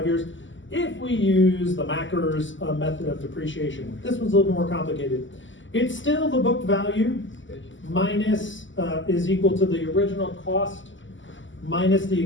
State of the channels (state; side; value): late; right; 0.55 ms